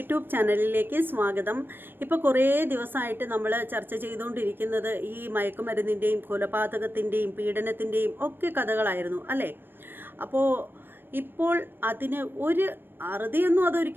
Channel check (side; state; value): left; late; 0.099 ms